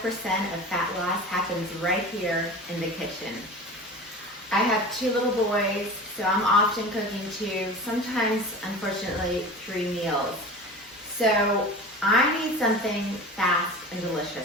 of fat loss happens right here in the kitchen. I have 2 little boys, so I'm often cooking 2, sometimes, unfortunately, 3 meals. So I need something fast and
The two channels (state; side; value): normal; both; correlation 0.35